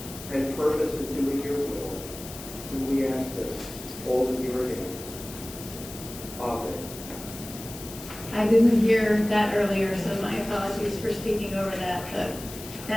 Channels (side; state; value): left; noise; hiss, 13 dB below the sound